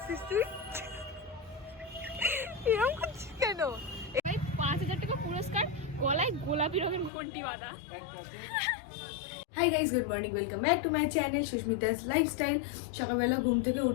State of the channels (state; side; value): drops out; right; at 7.1 s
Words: তুই? এরকম করছিস কেন? ৫,০০০ টাকা পুরস্কার, গলায় গোলাপি রঙের ঘন্টি বাঁধা। Hi guys, good morning, welcome back to my channel Susmita's lifestyle. সকালবেলা ঘুম থেকে